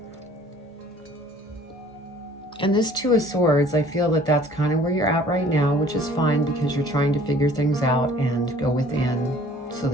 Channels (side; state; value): both; normal; correlation 0.53